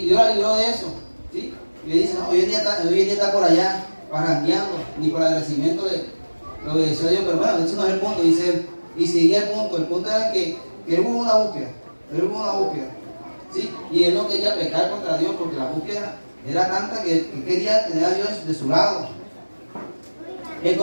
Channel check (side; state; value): both; inverted; correlation -1.00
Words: Dios la libró de eso. ¿Sí? Y le dice, no, hoy en día está por allá, parrandeando, ni por el agradecimiento de lo que decía Dios. Pero bueno, eso no es el punto, dice él. Y seguía el punto era que él hubo una búsqueda. ¿Sí? Y él no quería pecar contra Dios porque la búsqueda era tanta que quería tener a Dios de su lado.